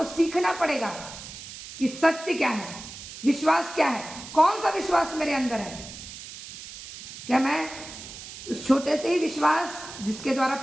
सीखना पड़ेगा कि सत्य क्या है, विश्वास क्या है, कौन सा विश्वास मेरे अंदर है। क्या मैं उस छोटे से ही विश्वास जिसके द्वारा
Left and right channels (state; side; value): noise; right; hiss, 13 dB below the sound